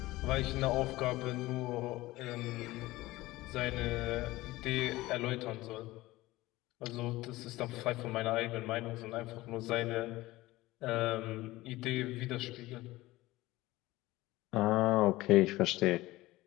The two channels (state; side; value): quieter; right; 18.5 dB